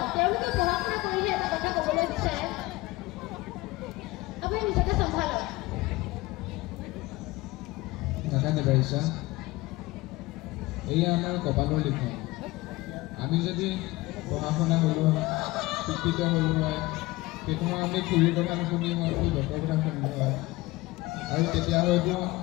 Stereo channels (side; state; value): right; quieter; 20.2 dB